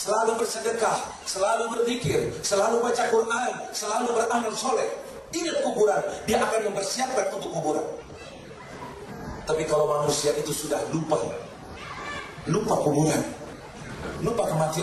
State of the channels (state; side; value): identical; both; correlation 1.00